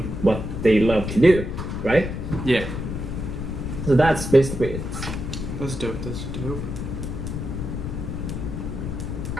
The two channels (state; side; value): noise; left; rumble, 4 dB below the sound